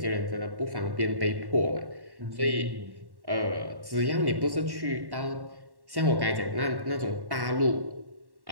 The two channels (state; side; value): late; left; 1.1 ms